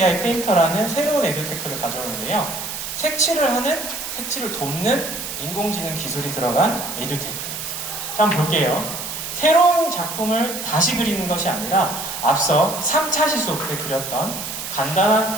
페인터라는 새로운 에듀테크를 가져오는데요. 색칠을 돕는 인공지능 기술이 들어간 에듀테크예요. 자, 한번 볼게요. 새로운 작품을 다시 그리는 것이 아니라 앞서 3차 시수업 때 그렸던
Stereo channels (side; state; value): right; noise; hiss, 6 dB below the sound